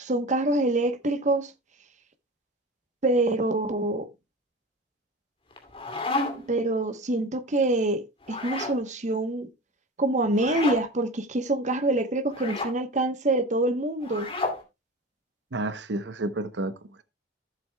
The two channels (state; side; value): normal; both; correlation 0.33